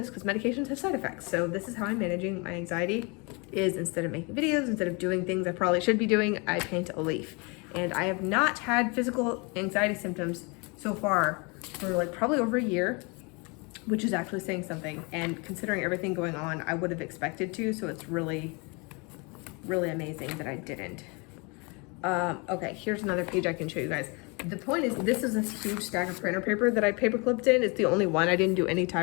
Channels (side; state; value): right; quieter; 30.4 dB